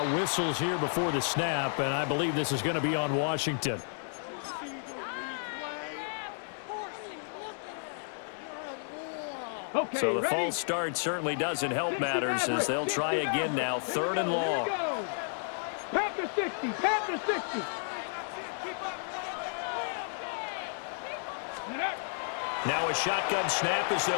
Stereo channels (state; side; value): silent; right; digital silence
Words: whistles here before the snap, and I believe this is going to be on Washington. Okay, So the ready? false start certainly doesn't help matters as they'll try again now. 3rd and long. Panther 60, Panther 60. Now a shotgun snap as